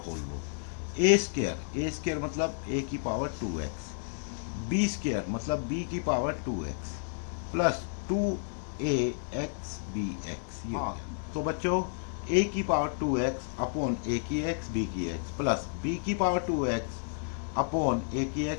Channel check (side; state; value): right; silent; 57 dB below the other